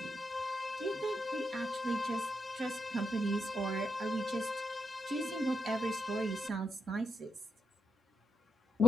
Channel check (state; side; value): normal; both; correlation 0.82